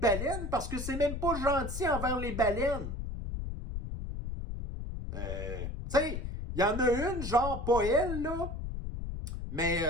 parce que c'est même pas gentil envers les baleines. Tu sais, il y en a une, genre pas elle, là. Mais,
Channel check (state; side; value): noise; left; rumble, 5 dB below the sound